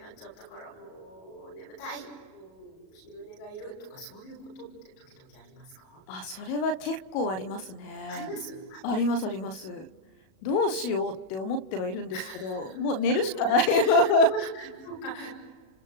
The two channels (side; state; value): right; late; 37 ms